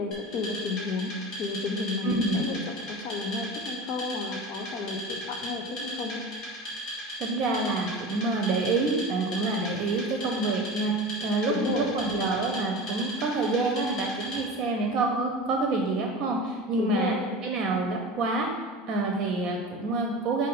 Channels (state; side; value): normal; both; correlation 0.32